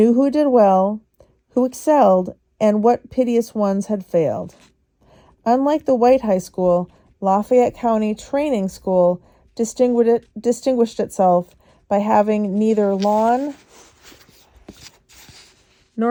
who did well, who excelled, and what piteous ones had failed. Unlike the white high school, Lafayette County Training School distinguished itself by having neither lawn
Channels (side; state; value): both; identical; correlation 1.00